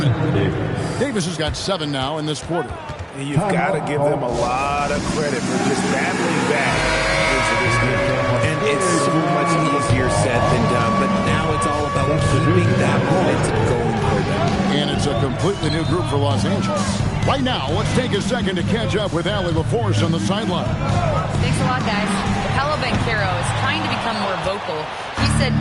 it. Davis has got 7 now in this quarter. And you've got to give them a lot of credit for just battling back into this game. And it's so much easier said than done, but now it's all about keeping that momentum going for them. And it's a completely new group for Los Angeles. Right now, let's take a second to catch up with Allie LaForce on the sideline. Thanks a lot, guys. Paolo Banchero is trying to become more vocal. He said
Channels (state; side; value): identical; both; correlation 1.00